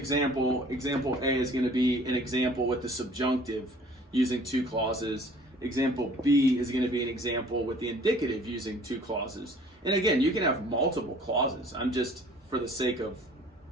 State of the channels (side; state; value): both; normal; correlation 0.52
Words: A is gonna be an example with the subjunctive using two clauses. Example B is going to be an example with the indicative using two clauses. And again, you can have multiple clauses. I'm just, for the sake of